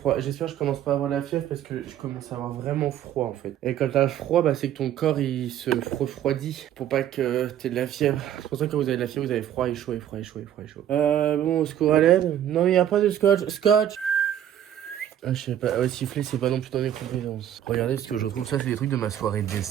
J'espère que je commence pas à avoir la fièvre parce que je commence à avoir vraiment froid en fait. Et quand t'as froid, bah c'est que ton corps il se refroidit pour pas que t'aies de la fièvre. C'est pour ça que quand vous avez de la fièvre, vous avez froid et chaud et froid et chaud et froid et chaud. Bon, au secours à l'aide. Non, il y a pas de scotch. Scotch! Ah, je sais pas, ouais, siffler, c'est pas non plus dans mes compétences. Regardez, ce que je trouve, ça, c'est des trucs de ma soirée de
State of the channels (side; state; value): left; quieter; 10.8 dB